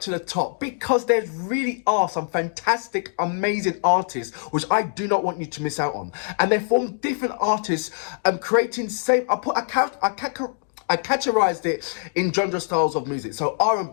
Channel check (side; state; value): right; silent; digital silence